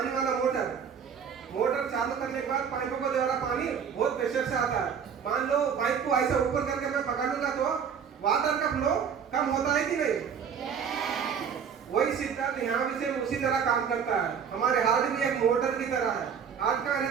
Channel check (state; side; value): quieter; left; 7.2 dB